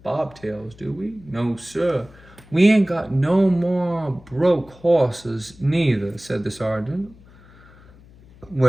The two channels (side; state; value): left; noise; hum, 24 dB below the sound